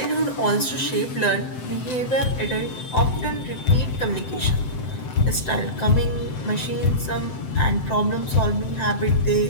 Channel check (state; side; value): late; right; 7.8 ms